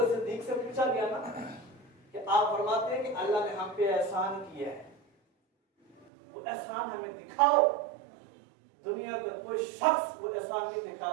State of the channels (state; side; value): drops out; left; at 6.1 s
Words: صدیق سے پوچھا گیا نا کہ آپ فرماتے ہیں کہ اللہ نے ہم پہ احسان کیا ہے، وہ احسان ہمیں دکھاؤ. دنیا کا کوئی شخص وہ احسان نہیں دکھا